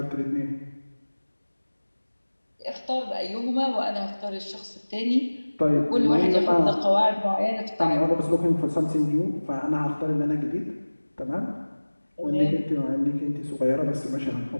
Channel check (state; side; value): inverted; both; correlation -1.00